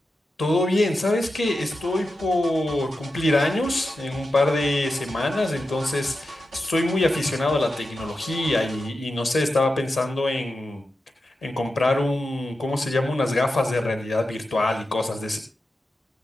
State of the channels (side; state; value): both; normal; correlation 0.90